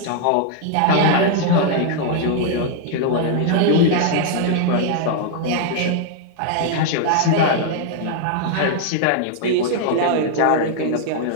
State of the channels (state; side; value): different; both; correlation 0.00